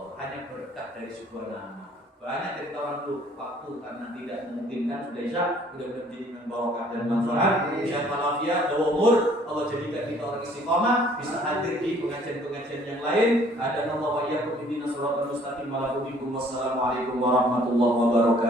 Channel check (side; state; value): both; normal; correlation 0.58